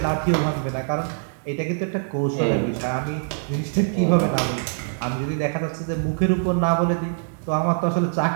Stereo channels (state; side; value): silent; left; digital silence